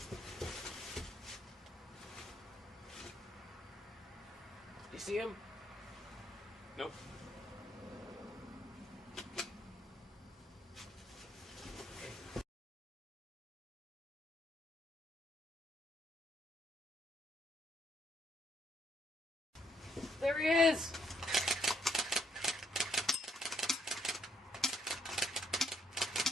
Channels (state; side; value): normal; both; correlation 0.72